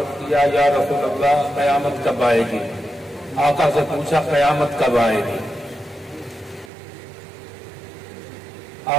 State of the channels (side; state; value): left; drops out; at 6.7 s